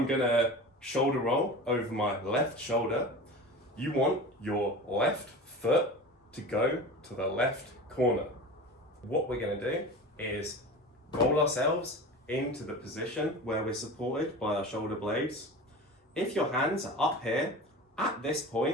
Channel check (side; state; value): both; normal; correlation 0.33